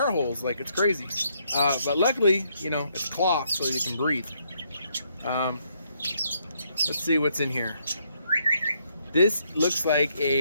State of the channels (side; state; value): both; inverted; correlation -0.73